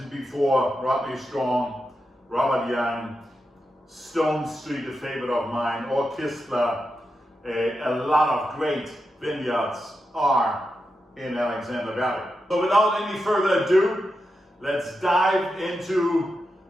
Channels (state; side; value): normal; both; correlation 0.88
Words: before, Rodney Strong, Robert Young, Stone Street, a favorite of mine, or Kistler. A lot of great vineyards are in Alexander Valley. So without any further ado, let's dive into